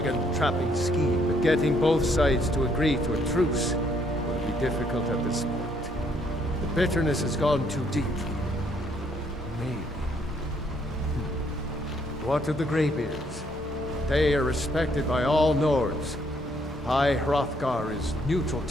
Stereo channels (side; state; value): both; normal; correlation 0.69